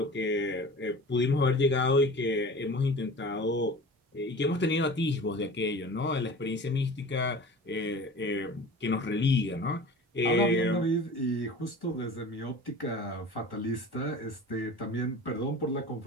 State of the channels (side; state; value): both; normal; correlation 0.39